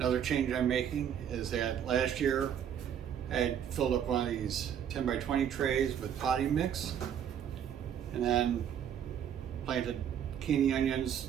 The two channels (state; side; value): quieter; left; 9.0 dB